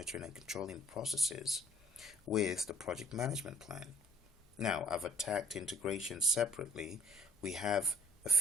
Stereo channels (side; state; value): both; normal; correlation 0.56